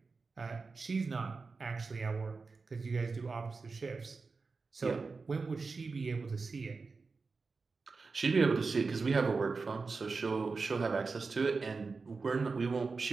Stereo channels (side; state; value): left; quieter; 4.3 dB